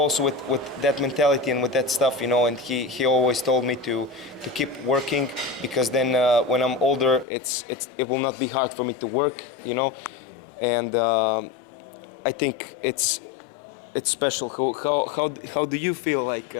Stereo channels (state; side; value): drops out; right; at 7.2 s